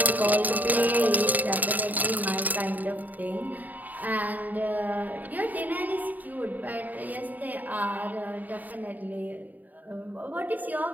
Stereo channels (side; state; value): left; late; 0.082 ms